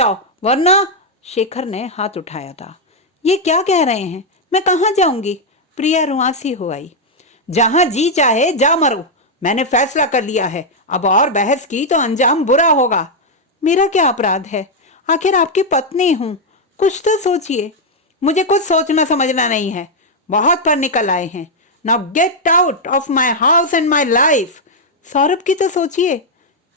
वरना। शेखर ने हाथ उठाया था। ये क्या कह रहे हैं? मैं कहाँ जाऊंगी? प्रिया रुआंसी हो आई। जहां जी चाहे जा मरो। मैंने फैसला कर लिया है। अब और बहस की तो अंजाम बुरा होगा। मेरा क्या अपराध है? आखिर आपकी पत्नी हूं। कुछ तो सोचिए। मुझे कुछ सोचना समझना नहीं है। बहुत पर निकल आए हैं। Now get out of my house and my life. Saurabh की तो सोचिए।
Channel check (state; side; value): normal; both; correlation -0.01